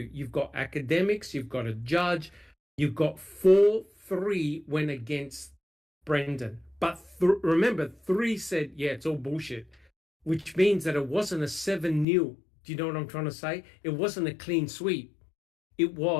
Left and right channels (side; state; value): right; drops out; at 12.1 s